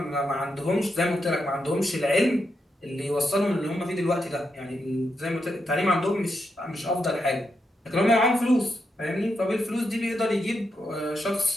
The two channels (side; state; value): both; normal; correlation 0.83